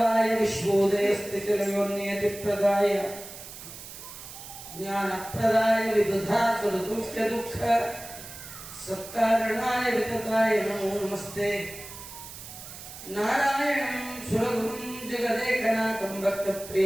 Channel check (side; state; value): right; noise; hiss, 13 dB below the sound